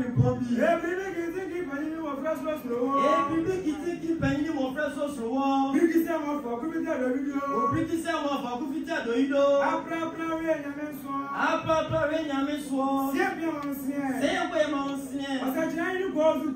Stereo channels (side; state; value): both; identical; correlation 1.00